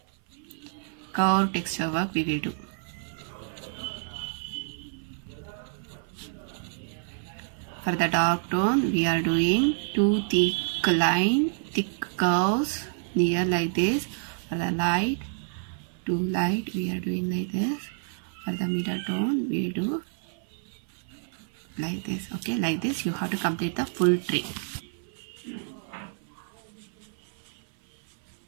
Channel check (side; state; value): left; silent; 56 dB below the other